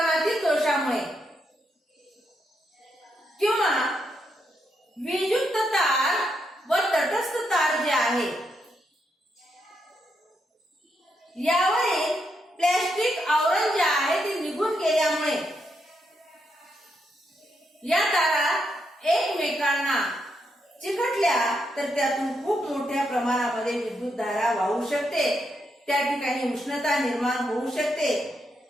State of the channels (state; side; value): normal; both; correlation 0.80